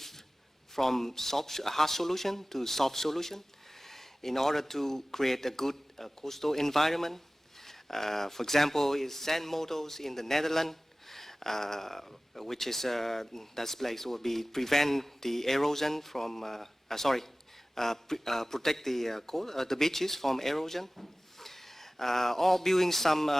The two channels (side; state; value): both; normal; correlation 0.97